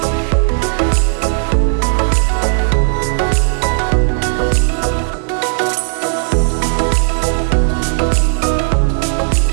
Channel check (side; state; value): left; silent; 60 dB below the other